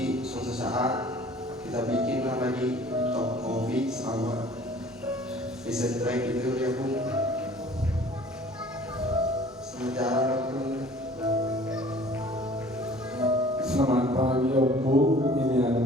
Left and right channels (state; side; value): normal; both; correlation 0.50